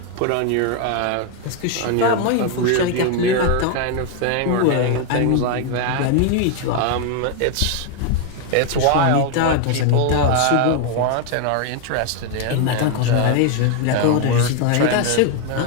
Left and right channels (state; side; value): different; both; correlation 0.01